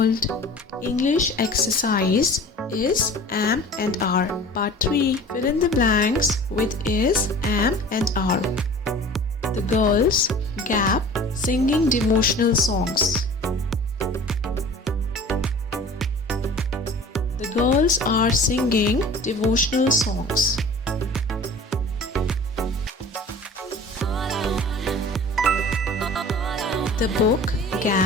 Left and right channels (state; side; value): normal; both; correlation 0.43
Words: English exercise is am and are. Part 3. Fill in the blanks with is, am and are. The girls gap singing devotional songs. The girls are singing devotional songs. The book